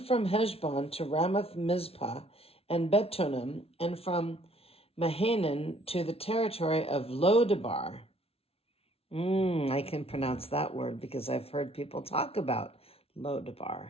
from Heshbon to Ramoth Mizpah and Betonim, and from Mahanaim to the territory of Lodebar. I can pronounce that word because I've heard people talk about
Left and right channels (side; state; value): right; late; 0.28 ms